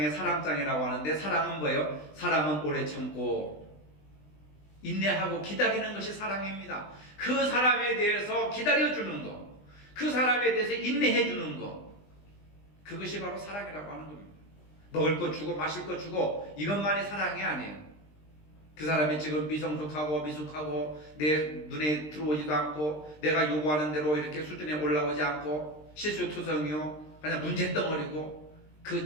사랑장이라고 하는데 사랑은 뭐예요? 사랑은 오래 참고 인내하고 기다리는 것이 사랑입니다. 그 사람에 대해서 기다려주는 것, 그 사람에 대해서 인내해주는 것, 그것이 바로 사랑이라고 하는 겁니다. 먹을 것 주고 마실 것 주고 이것만이 사랑이 아니에요. 그 사람이 지금 미성숙하고 미숙하고 내 눈에 들어오지도 않고 내가 요구하는 대로 이렇게 수준에 올라오지 않고 실수투성이요 그냥 문제덩어리고 그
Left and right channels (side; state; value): right; late; 20 ms